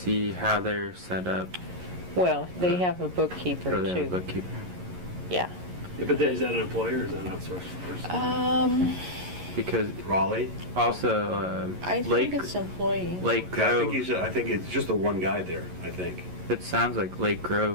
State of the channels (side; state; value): left; late; 11 ms